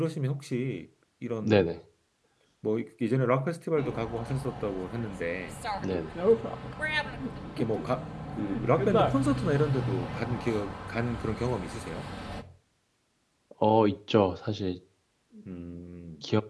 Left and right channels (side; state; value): both; identical; correlation 1.00